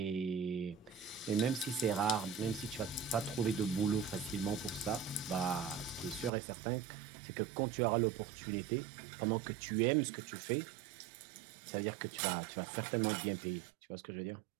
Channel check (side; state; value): left; drops out; at 6.3 s